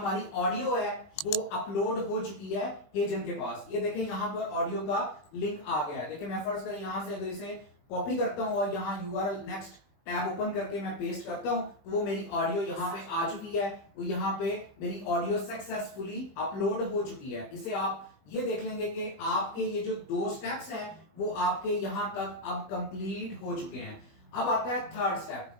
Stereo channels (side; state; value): right; late; 20 ms